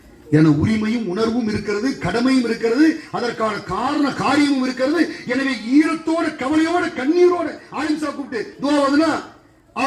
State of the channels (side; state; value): both; identical; correlation 1.00